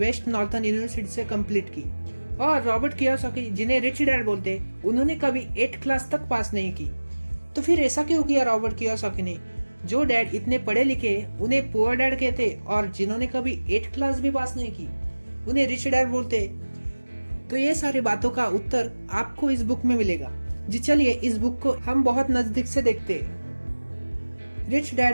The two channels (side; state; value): both; inverted; correlation -1.00